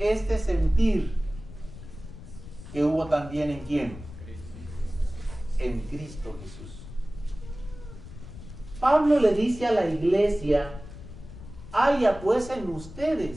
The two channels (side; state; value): left; noise; rumble, 14 dB below the sound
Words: sentir que hubo también en ¿quién? En Cristo Jesús. Pablo le dice a la iglesia haya pues en